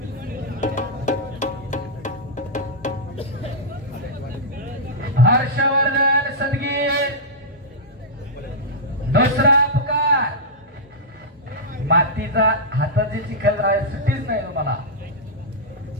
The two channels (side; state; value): both; normal; correlation -0.09